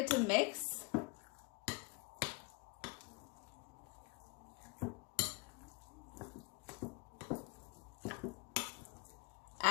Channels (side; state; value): right; quieter; 28.3 dB